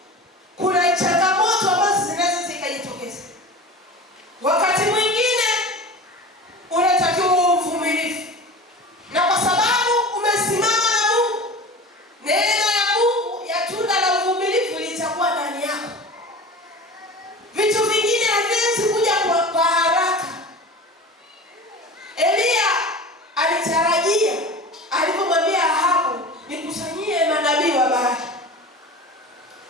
kuna changamoto ambazo zinaweza zikajitokeza. Wakati mwingine unatakiwa uvumilivu. Na kwa sababu umesimama na Mungu, neema ya Mungu ya tunda la uvumilivu litakuwa ndani yako. Vitu vingine haviwezi kuja kwa haraka. Elia alitarajia alipomwambia Ahabu, nikusanyie manabii wa Baali,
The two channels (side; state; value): both; normal; correlation 0.35